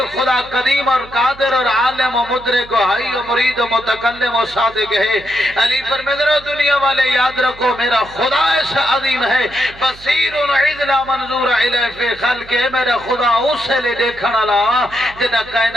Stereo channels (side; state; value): right; noise; hum, 21 dB below the sound